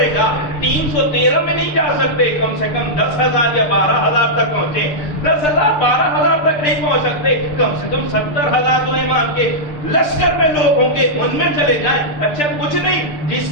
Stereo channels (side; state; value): right; late; 6.7 ms